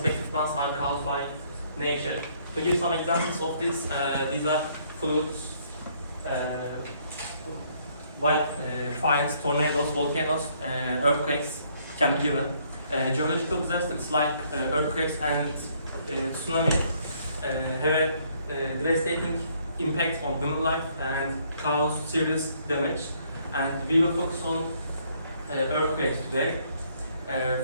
ones are caused by nature. To give some examples of this, these are floods, fires, tornadoes, volcanoes, earthquakes can be given. Geological disasters like earthquakes and tsunami have a devastating impact on human life and cause serious damage. And we will focus on earthquakes today.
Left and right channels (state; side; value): inverted; both; correlation -0.66